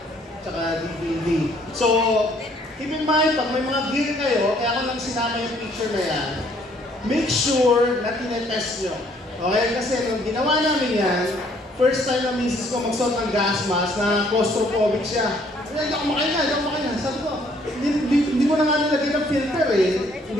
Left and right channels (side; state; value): both; normal; correlation 0.63